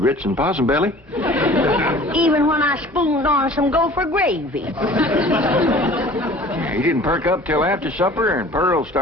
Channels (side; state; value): both; normal; correlation 0.46